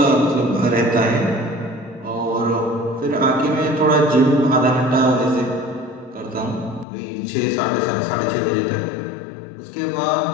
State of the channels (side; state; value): right; drops out; at 6.9 s